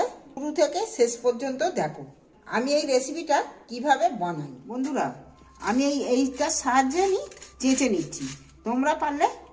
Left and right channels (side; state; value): both; identical; correlation 1.00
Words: শুরু থেকে শেষ পর্যন্ত দেখো। আমি এই রেসিপিটা কিভাবে বানাই বন্ধুরা, আমি এইটার সাহায্যে আমি চেঁচে নিচ্ছি। তোমরা পারলে